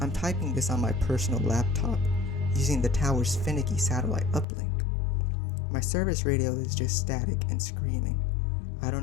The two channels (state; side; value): drops out; right; at 4.5 s